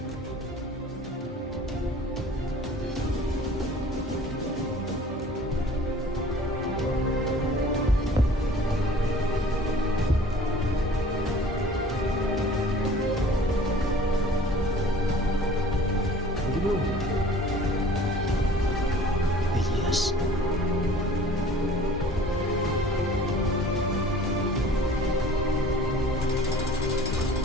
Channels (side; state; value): both; normal; correlation 0.48